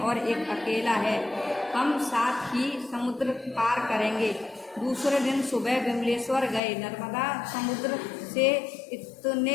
एक अकेला है। हम साथ ही समुद्र पार करेंगे। दूसरे दिन सुबह विमलेश्वर गए। नर्मदा समुद्र से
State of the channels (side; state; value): right; drops out; at 6.6 s